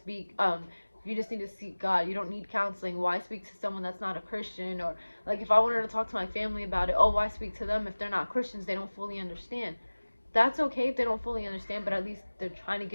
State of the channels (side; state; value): both; inverted; correlation -1.00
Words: you just need to seek God, you don't need counseling. Why speak to someone that's not a Christian? Or like, if I wanted to talk to my family about it, oh, why speak to them if they're not Christians? They don't fully understand. That's okay if they don't fully understand, but at least they're trying to